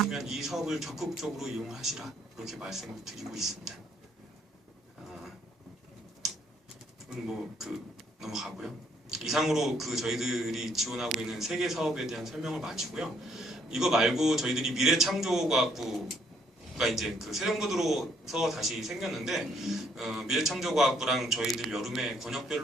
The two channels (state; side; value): normal; both; correlation 0.67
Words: 이 사업을 적극적으로 이용하시라 그렇게 말씀을 드리고 있습니다. 넘어가고요. 이상으로 저희들이 지원하고 있는 3개 사업에 대한 설명을 마치고요. 이거 말고 저희들이 미래창조과학부가 이제 새 정부 들어서 다시 생겼는데 미래창조과학부랑 저희들 여름에